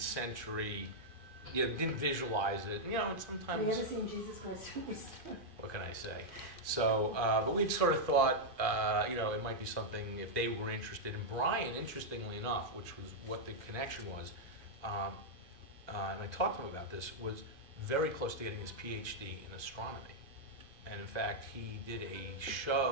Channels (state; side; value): late; left; 2.5 ms